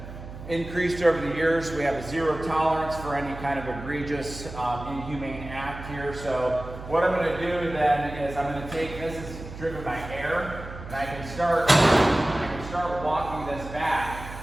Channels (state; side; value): noise; right; hum, 12 dB below the sound